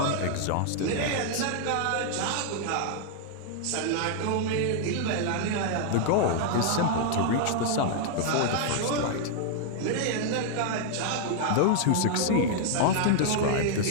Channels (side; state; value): both; different; correlation -0.01